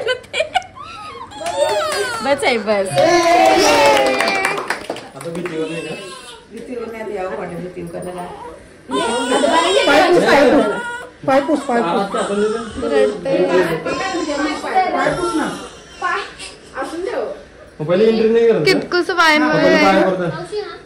ना ते. बस आहे बस. पायपूस कितकुस पाय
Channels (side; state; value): both; identical; correlation 1.00